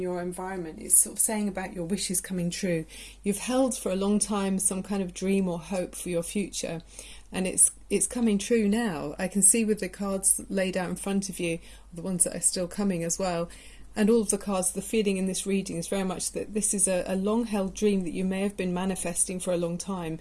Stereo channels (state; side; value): identical; both; correlation 1.00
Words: environment. It's sort of saying about your wishes coming true. You've held for a long time some kind of dream or hope for your future, and it's coming true now. I can see with the cards laid out in front of you, the ones that are still coming as well, and all of the cards, the feeling in this reading is very much that this is a long-held dream that you may have been manifesting for a long time.